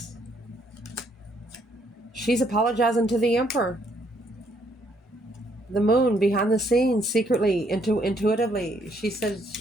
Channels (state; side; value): normal; both; correlation 0.70